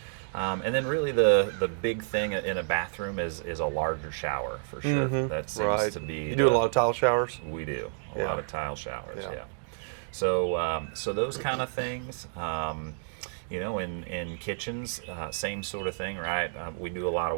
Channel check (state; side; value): silent; left; digital silence